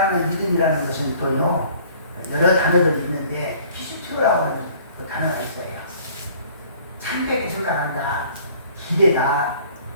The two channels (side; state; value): both; inverted; correlation -0.54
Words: 믿음이라는 것은 또요, 여러 단어들이 있는데, 피스튜라고 하는 그 단어가 있어요. 참되게 생각한다, 기대다,